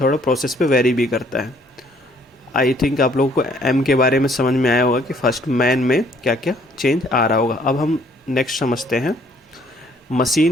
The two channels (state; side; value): normal; both; correlation 0.62